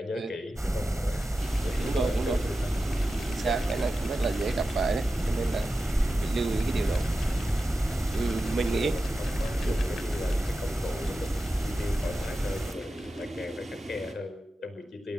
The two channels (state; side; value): normal; both; correlation 0.92